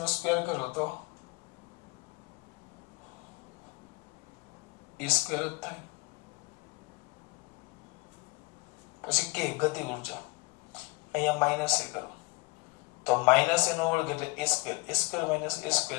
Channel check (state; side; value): quieter; right; 27.0 dB